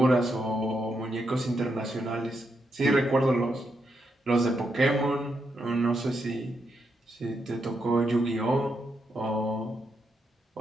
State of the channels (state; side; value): normal; both; correlation 0.82